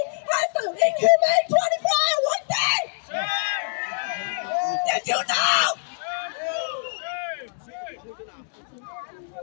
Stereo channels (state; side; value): silent; right; digital silence